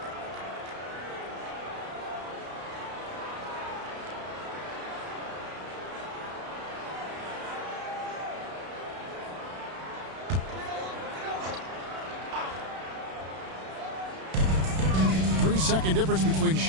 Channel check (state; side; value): late; left; 32 ms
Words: 10-second difference between